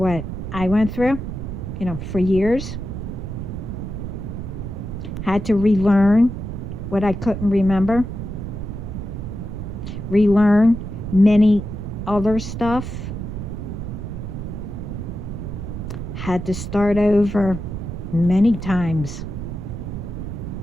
I went through, for years. Had to relearn what I couldn't remember. Relearn many other stuff. Had to start over many times.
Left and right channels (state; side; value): noise; right; rumble, 6 dB below the sound